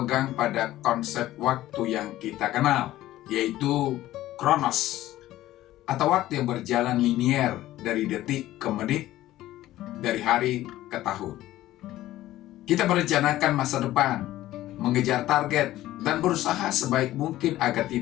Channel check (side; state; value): right; quieter; 15.0 dB